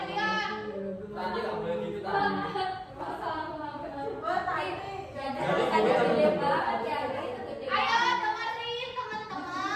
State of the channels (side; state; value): both; identical; correlation 1.00